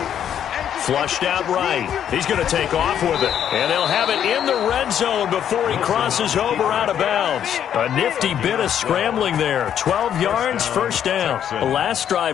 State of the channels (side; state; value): right; quieter; 9.5 dB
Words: Flushed out right. He's going to take off with it. And they'll have it in the red zone before he crosses over out of bounds. A nifty bit of scrambling there. 12 yards, first down. The last